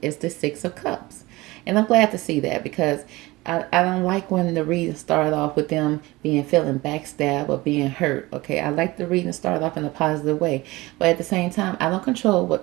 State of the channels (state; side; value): quieter; left; 20.6 dB